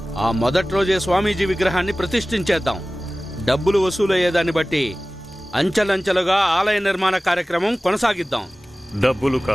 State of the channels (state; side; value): normal; both; correlation 0.97